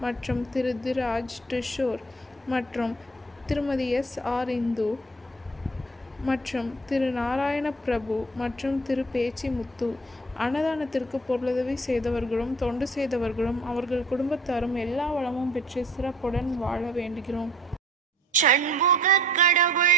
மற்றும் திரு திராஜ் டிஷோர் மற்றும் திருமதி S.R. இந்து மற்றும் திரு நாராயண பிரபு மற்றும் திரு பேச்சி முத்து. அன்னதானத்திற்கு பொருளுதவி செய்தவர்களும் தொண்டு செய்தவர்களும் அவர்கள் குடும்பத்தாரும் எல்லா வளமும் பெற்று சிறப்புடன் வாழ வேண்டுகிறோம். சண்முக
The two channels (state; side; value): normal; both; correlation 0.52